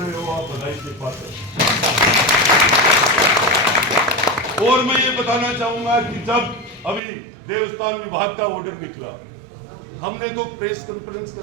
हो, आप बधाई के पात्र। और मैं ये बताना चाहूंगा कि जब अभी देवस्थान विभाग का ऑर्डर निकला, हमने तो प्रेस कॉन्फ्रेंस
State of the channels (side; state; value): left; drops out; at 7.0 s